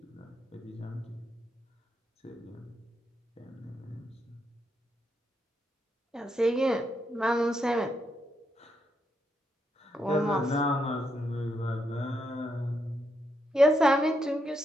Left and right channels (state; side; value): normal; both; correlation 0.80